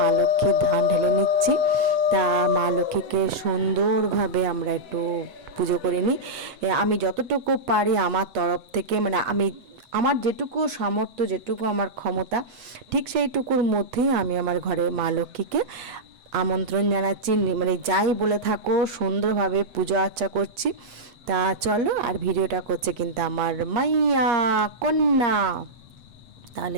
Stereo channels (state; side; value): late; left; 8.0 ms